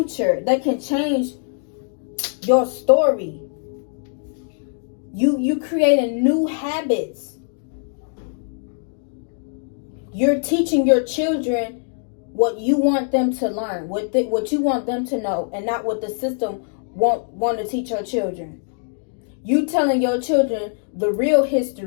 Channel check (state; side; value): silent; right; 64 dB below the other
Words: that can change your story. You creating new habits. You're teaching your children what you want them to learn, what you want them to know, and not what the system want to teach your children. You telling your children the real